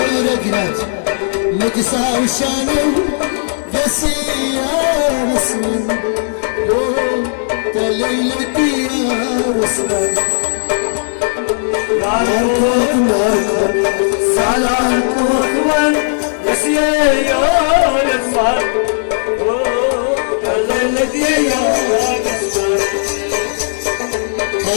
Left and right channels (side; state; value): right; silent; digital silence